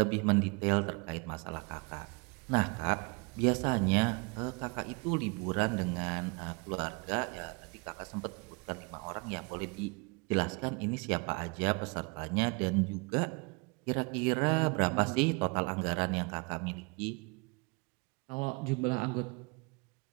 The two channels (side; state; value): left; quieter; 30.7 dB